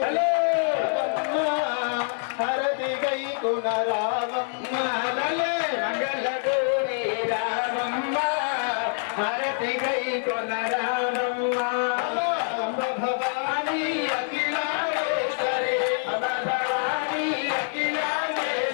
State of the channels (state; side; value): silent; right; 61 dB below the other